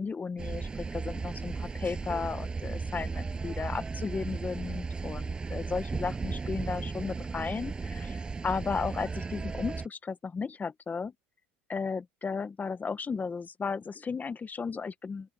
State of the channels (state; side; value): normal; both; correlation 0.85